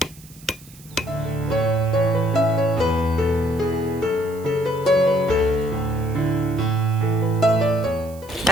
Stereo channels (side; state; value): right; noise; hiss, 23 dB below the sound